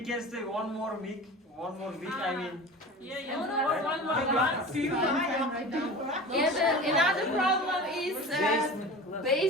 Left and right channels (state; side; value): normal; both; correlation 0.35